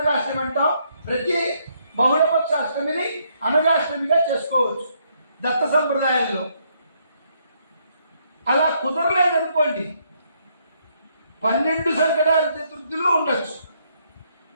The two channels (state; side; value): inverted; both; correlation -0.72